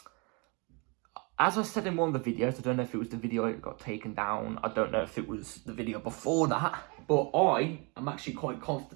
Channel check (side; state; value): left; quieter; 31.4 dB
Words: As I said in one of the videos, I don't know if it was the video that got taken down. I don't know if it was the video before that. But I am actually quite